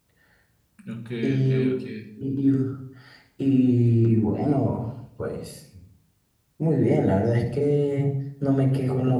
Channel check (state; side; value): identical; both; correlation 1.00